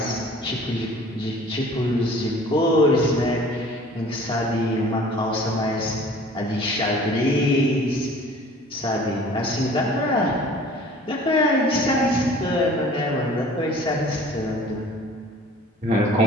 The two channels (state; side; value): normal; both; correlation 0.48